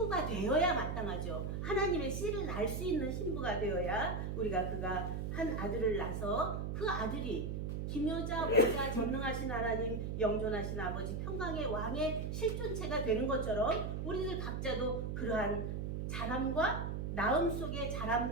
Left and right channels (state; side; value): noise; right; hum, 2 dB below the sound